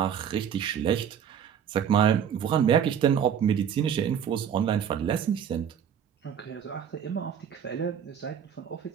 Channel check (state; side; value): quieter; left; 8.4 dB